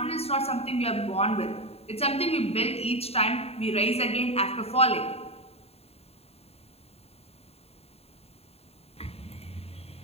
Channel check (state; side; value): late; right; 0.29 ms